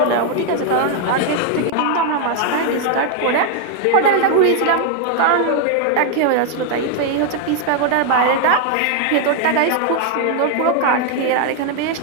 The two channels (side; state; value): both; different; correlation 0.00